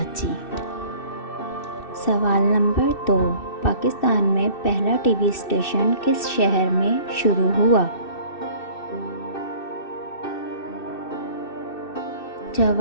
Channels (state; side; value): late; right; 2.6 ms